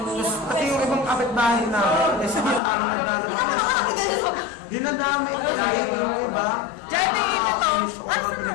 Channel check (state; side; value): drops out; right; at 2.6 s